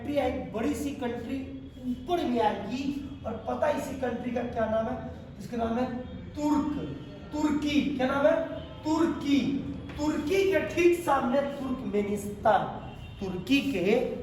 है, एक बड़ी सी कंट्री ऊपर में आएगी, और पता है इसी कंट्री का क्या नाम है? इसका नाम है तुर्की। क्या नाम है? तुर्की। तुर्की के ठीक सामने तुर्कमेनिस्तान, तुर्की के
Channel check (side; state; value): both; identical; correlation 1.00